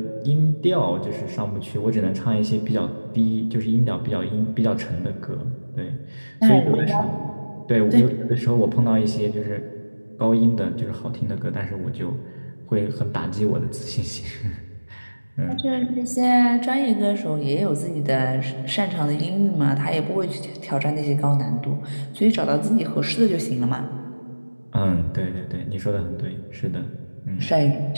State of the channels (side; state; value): both; inverted; correlation -1.00